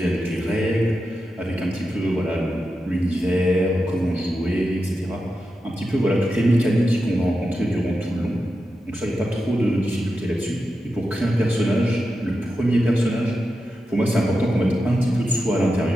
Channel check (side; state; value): both; normal; correlation 0.90